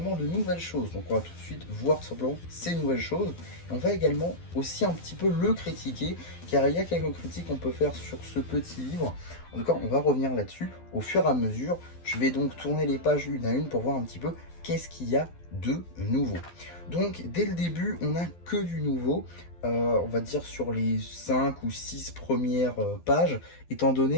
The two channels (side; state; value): right; late; 12 ms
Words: de nouvelles choses. Donc on va tout de suite voir tout simplement ces nouvelles choses. Et on va également aussi un petit peu le critiquer, car il y a quelques critiques qu'on peut faire sur ce petit livre. En tout cas, on va revenir là-dessus au fur et à mesure. Je vais donc tourner les pages une à une pour voir un petit peu qu'est-ce qu'il y a de nouveau. Donc dès le début, on n'a que du nouveau. On va dire sur les 5 ou 6 premières pages, étant